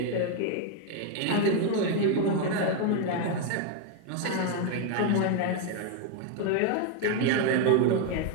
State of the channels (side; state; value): both; different; correlation 0.01